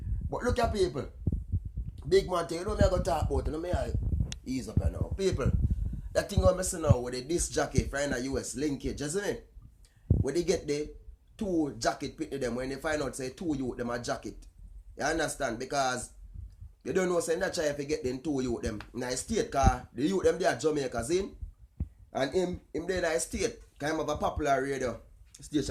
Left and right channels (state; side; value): identical; both; correlation 1.00